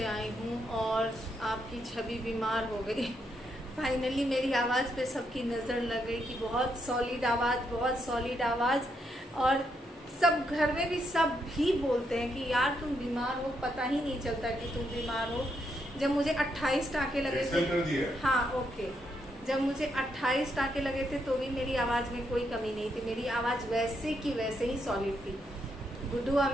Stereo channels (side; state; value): both; normal; correlation 0.78